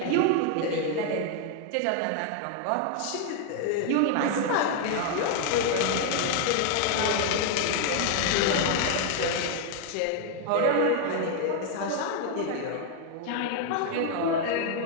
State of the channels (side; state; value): both; different; correlation 0.00